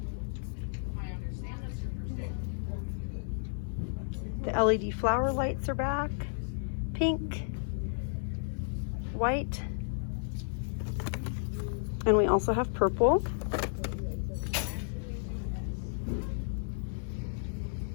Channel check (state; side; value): silent; right; digital silence